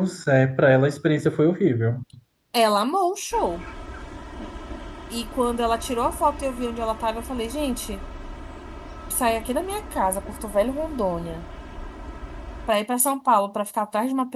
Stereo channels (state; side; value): identical; both; correlation 1.00